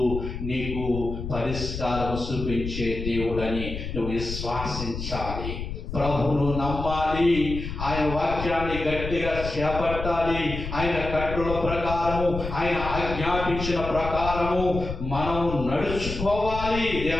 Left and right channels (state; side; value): noise; left; rumble, 6 dB below the sound